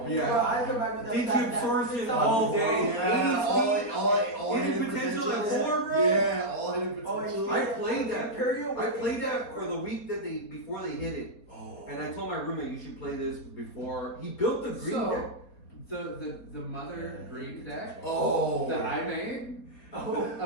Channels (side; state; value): right; late; 4.2 ms